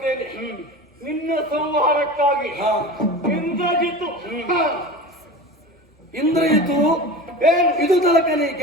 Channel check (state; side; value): normal; both; correlation 0.32